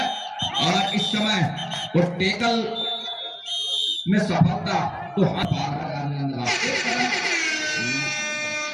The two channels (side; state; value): both; identical; correlation 1.00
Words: और इस समय वो टेकल में सफलता तो हाथ